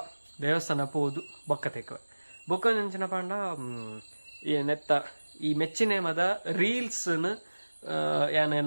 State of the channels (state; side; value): inverted; both; correlation -1.00